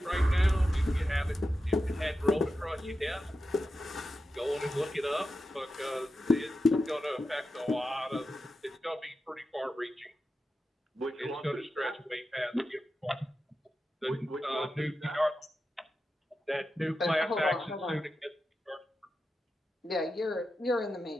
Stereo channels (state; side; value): normal; both; correlation 0.90